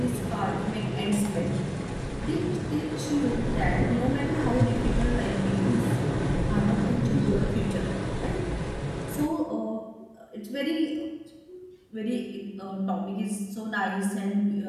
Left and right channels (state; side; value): identical; both; correlation 1.00